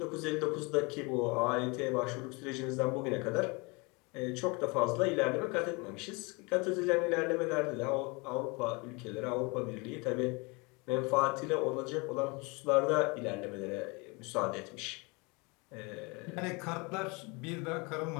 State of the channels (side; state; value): right; quieter; 28.3 dB